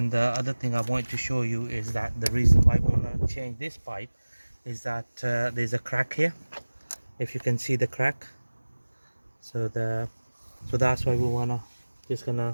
the other thing I want to show you is that the reason why we want to change this pipe is that there's a crack here, if you can see the crack. So that's why we want to just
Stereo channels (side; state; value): both; inverted; correlation -1.00